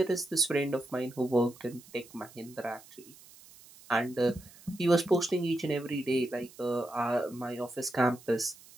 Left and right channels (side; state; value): right; noise; hiss, 22 dB below the sound